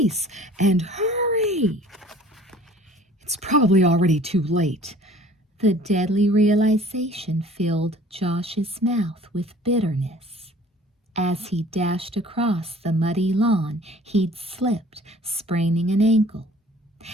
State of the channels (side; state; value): both; normal; correlation 0.50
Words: and hurry!" "It's probably already too late." The deadly realization filled Josh's mouth with bitterness. As he dashed across the muddy lawn, he'd slipped, spraining an ankle.